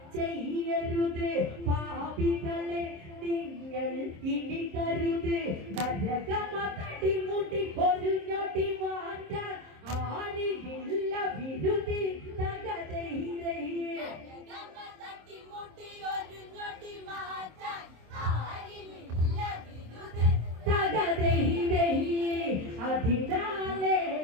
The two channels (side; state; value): left; late; 26 ms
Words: ചെയ്യരുത് പാപികളെ നിങ്ങൾ ഇനി കരുത് നരകമതടി മുടി ഒരു ഞൊടി മാറ്റാൻ ആരില്ല വിരുതി തകതൈ അതിനാലെ